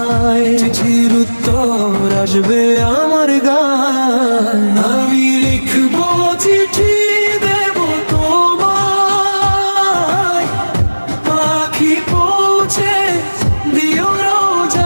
চিঠির উত্তর আসবে আমার গায়। আমি লিখবো চিঠি দেব তোমায়, পাখি পৌঁছে দিও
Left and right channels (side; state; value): both; inverted; correlation -1.00